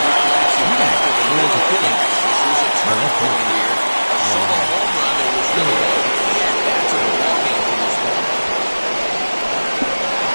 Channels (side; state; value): both; inverted; correlation -1.00